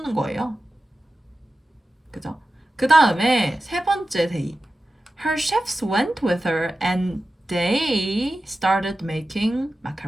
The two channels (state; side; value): normal; both; correlation 0.94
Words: 거예요. 그죠? 그 다음에 세 번째 they. Her chefs went with her and they started making